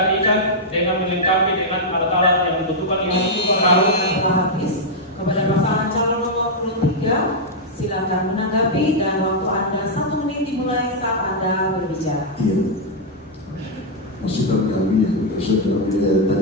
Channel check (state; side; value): normal; both; correlation -0.05